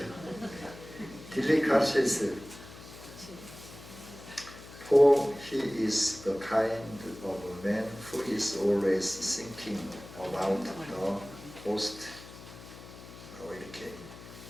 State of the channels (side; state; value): left; noise; hum, 16 dB below the sound